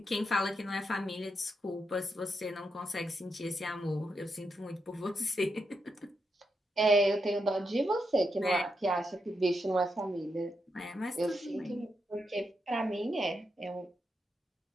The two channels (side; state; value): both; normal; correlation 0.83